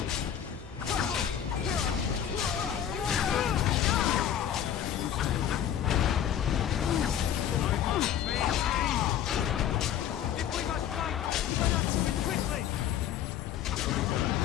I must maintain! If we must fight, let us do it quickly!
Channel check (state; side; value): quieter; right; 9.8 dB